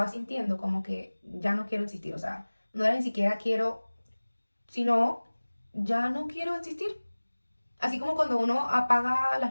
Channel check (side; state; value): both; inverted; correlation -1.00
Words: sintiendo como que ya no quiero existir, o sea, no era ni siquiera quiero, sino ya no quiero existir. Así como cuando uno apaga las